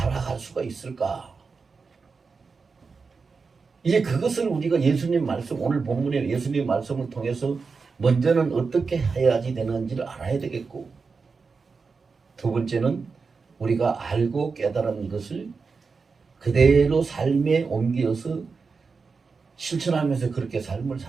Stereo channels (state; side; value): quieter; left; 4.8 dB